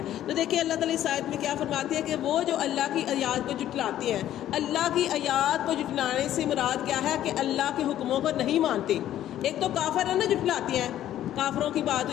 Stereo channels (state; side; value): quieter; right; 12.2 dB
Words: تو دیکھیں اللہ تعالیٰ اس آیت میں کیا فرماتے ہیں کہ وہ جو اللہ کی آیات کو جھٹلاتے ہیں، اللہ کی آیات کو جھٹلانے سے مراد کیا ہے کہ اللہ کے حکموں کو نہیں مانتے۔ ایک تو کافر ہے نا جھٹلاتے ہیں، کافروں کی بات